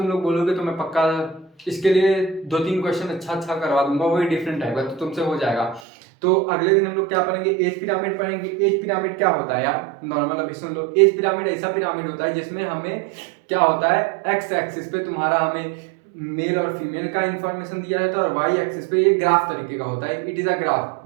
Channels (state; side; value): drops out; left; at 5.8 s